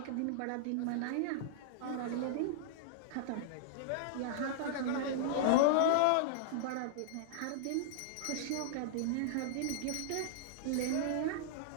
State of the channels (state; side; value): different; both; correlation -0.01